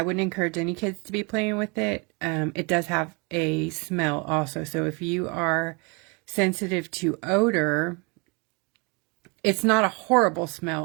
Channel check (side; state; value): left; quieter; 30.5 dB